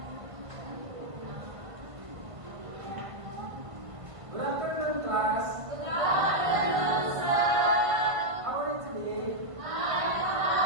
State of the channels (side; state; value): left; late; 1.5 ms